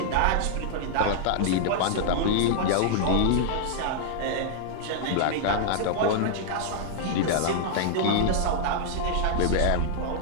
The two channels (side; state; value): both; different; correlation -0.01